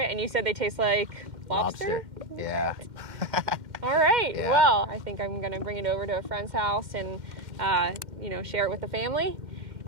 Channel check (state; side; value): late; left; 2.1 ms